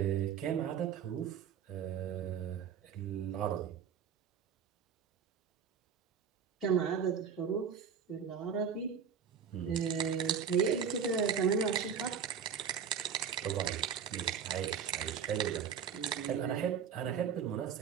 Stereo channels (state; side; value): quieter; left; 7.5 dB